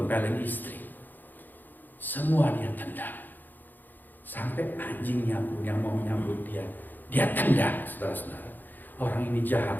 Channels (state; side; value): late; right; 0.088 ms